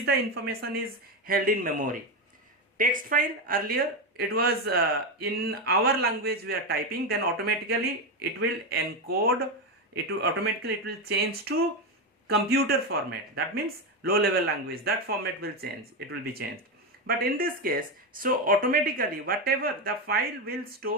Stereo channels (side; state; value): both; normal; correlation 0.11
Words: the information is held in memory. Text file, earlier it was in our language we are typing, then automatically it will encode, it will change to computer format. That means low level language, that format will change, it will be changed. But in this case, so automatically whatever the file will